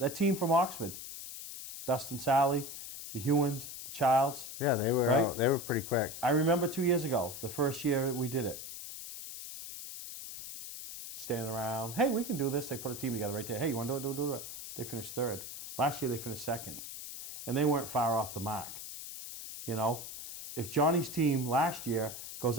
team from Oxford, Dustin Sally, the Hewins, the Childs. Yeah, they were right? They were pretty quick. I remember 2 years ago, the first year we did it. Standing around, hey, we can do this. They put a team together right there. Hey, you want to do it? Do it. They finished 3rd. Last year they finished 2nd. And they weren't far off the mark. If Johnny's team last year goes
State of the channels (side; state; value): left; noise; hiss, 10 dB below the sound